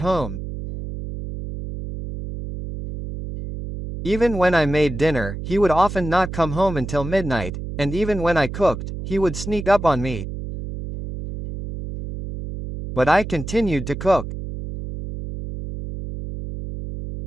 Even when I made dinner, he would often not come home until midnight, and even when I cooked, he would sneak up on me. But I continued to cook.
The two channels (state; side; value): noise; right; hum, 8 dB below the sound